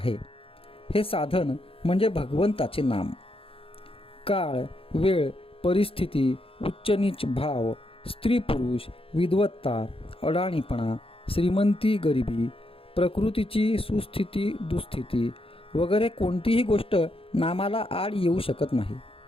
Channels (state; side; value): late; right; 0.27 ms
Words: हे साधन म्हणजे भगवंताचे नाम. काळ, वेळ, परिस्थिती, उच्च नीच भाव, स्त्री पुरुष, विद्वत्ता, अडाणीपणा, श्रीमंती गरिबी, प्रकृतीची सुस्थिती दुस्थिती वगैरे कोणतीही गोष्ट नामाला आड येऊ शकत नाही.